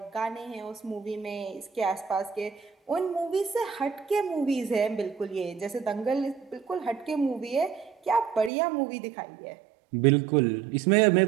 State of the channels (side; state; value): left; drops out; at 8.5 s